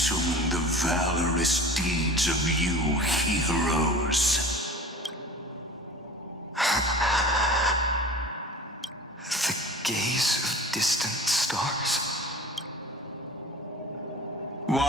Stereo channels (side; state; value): both; normal; correlation 0.39